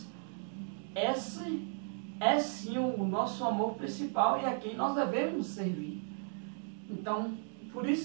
Esse é sim o nosso amor principal e a quem nós devemos servir. Então, por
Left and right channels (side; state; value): left; silent; 54 dB below the other